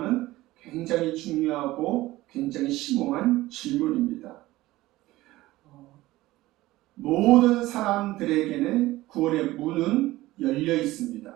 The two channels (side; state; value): left; quieter; 17.6 dB